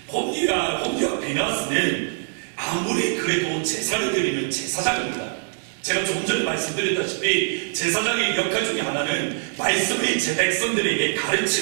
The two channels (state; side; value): silent; left; 61 dB below the other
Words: 홈리와 비나스는 아무리 그래도 제사를 드리는 제사장입니다. 제가 조금 전에 말씀드렸다시피 제사장의 역할 중에 하나는 말씀을 제 백성들에게